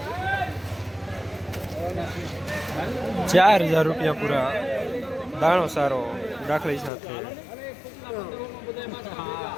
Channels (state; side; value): drops out; right; at 6.9 s